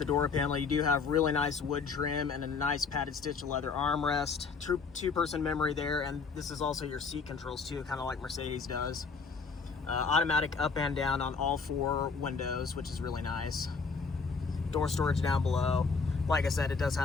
door panel, you do have really nice wood trim and a nice padded stitch leather armrest. Two-person memory there, and this is also your seat controls too, kind of like Mercedes does. Automatic up and down on all 4 windows, which is really nice. Door storage down below. Like I said, it does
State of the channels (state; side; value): quieter; right; 4.9 dB